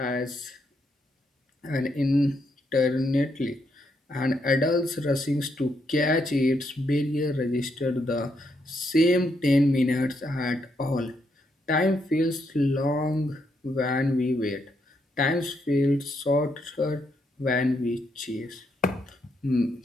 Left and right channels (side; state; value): both; normal; correlation 0.77